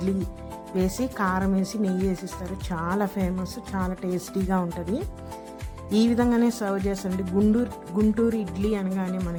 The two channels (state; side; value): identical; both; correlation 1.00